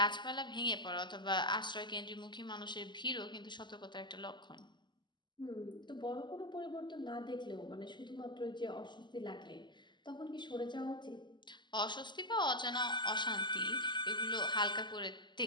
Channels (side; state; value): right; late; 0.22 ms